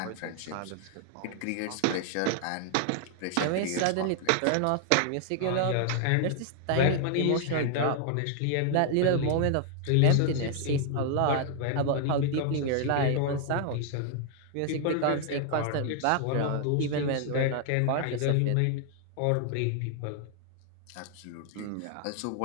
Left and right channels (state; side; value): different; both; correlation 0.00